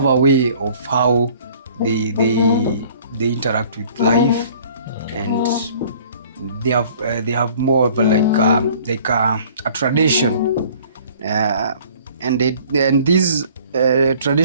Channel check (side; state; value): both; inverted; correlation -0.53